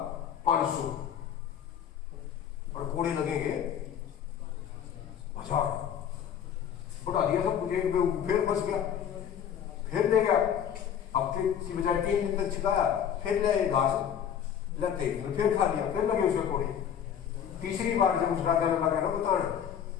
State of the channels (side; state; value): right; quieter; 8.8 dB